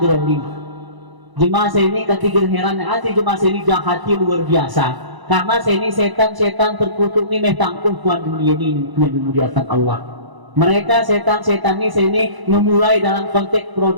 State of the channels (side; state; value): left; late; 1.0 ms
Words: Jemaah saya ini ketika heran hati jemaah saya ini jahati luar biasa. Karena saya ini setan terkutuk ni metangkung kuat dunia ini yang dimuliakan Allah. Mereka setan ini saya ini memulai dalam konteks